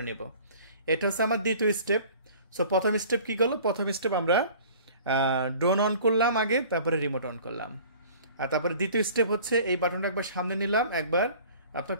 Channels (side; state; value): both; inverted; correlation -0.47